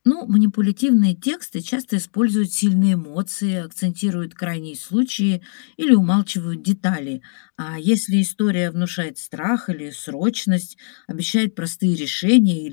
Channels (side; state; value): right; silent; digital silence